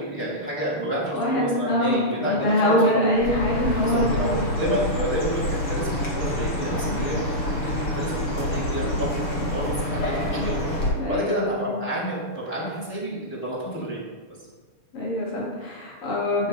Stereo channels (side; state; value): right; late; 6.9 ms